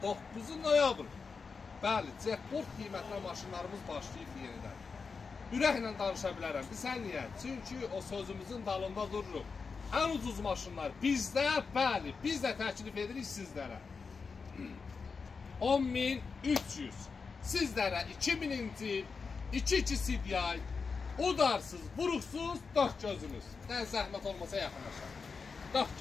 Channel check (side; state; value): right; quieter; 5.0 dB